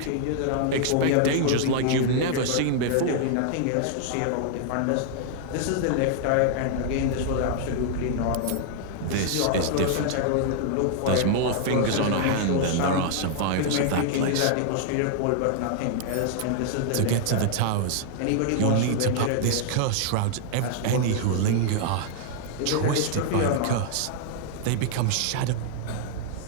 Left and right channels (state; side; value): different; both; correlation -0.01